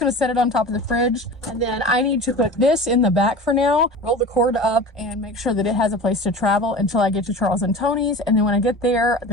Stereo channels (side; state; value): both; normal; correlation 0.35